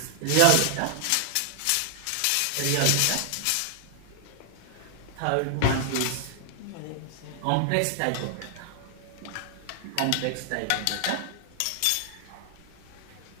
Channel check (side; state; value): both; different; correlation 0.00